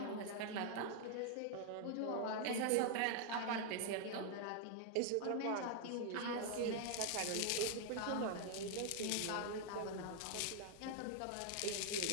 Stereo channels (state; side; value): different; both; correlation 0.00